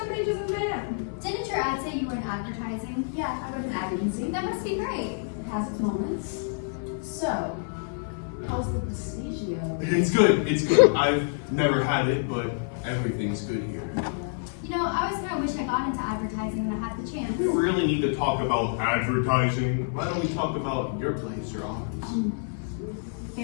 ages of man. Didn't your ad say you were in advertising? Yeah, I wrote an ad agency. That must be great. It has its moments. So, how's the Prestigio? It's good. It's good. I've never had it, but everything's good here. You know, I always kind of wish I got into advertising when I had the chance. We really need to talk about advertising. Why don't we talk about your place or ours?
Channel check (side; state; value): right; silent; 60 dB below the other